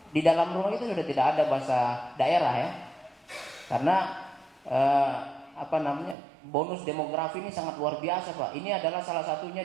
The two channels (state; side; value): drops out; left; at 6.2 s